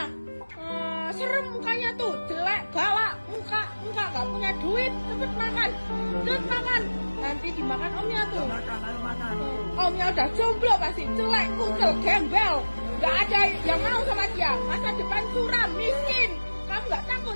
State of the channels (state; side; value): inverted; both; correlation -1.00